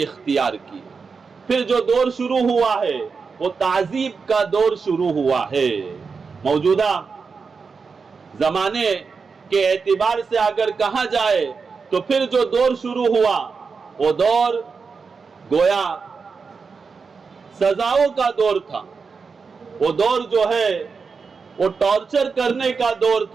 اختیار کی۔ پھر جو دور شروع ہوا ہے وہ تعذیب کا دور شروع ہوا ہے۔ موجودہ زمانے کے اعتبار سے اگر کہا جائے تو پھر جو دور شروع ہوا وہ دور گویا سزاؤں کا دور تھا، وہ دور جو ہے وہ ٹارچر کرنے کا دور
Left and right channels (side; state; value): left; quieter; 5.1 dB